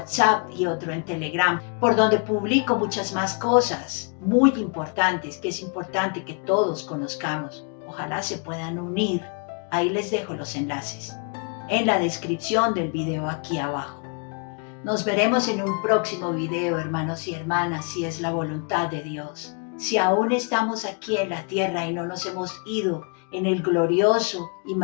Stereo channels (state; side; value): quieter; right; 37.3 dB